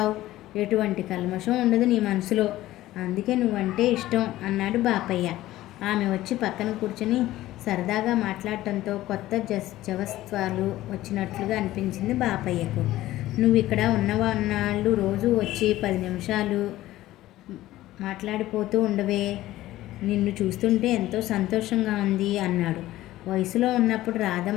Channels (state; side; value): quieter; right; 15.6 dB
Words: ఎటువంటి కల్మషం ఉండదు నీ మనసులో. అందుకే నువ్వంటే ఇష్టం అన్నాడు బాపయ్య. ఆమె వచ్చి పక్కన కూర్చొని సరదాగా మాట్లాడటంతో కొత్త జవత్వాలు వచ్చినట్లుగా అనిపించింది బాపయ్యకు. నువ్వు ఇక్కడ ఉన్నవాళ్ళు రోజు వచ్చి 10 నిమిషాలు మాట్లాడిపోతూ ఉండవే, నిన్ను చూస్తుంటే ఎంతో సంతోషంగా ఉంది అన్నాడు. వయసులో ఉన్నప్పుడు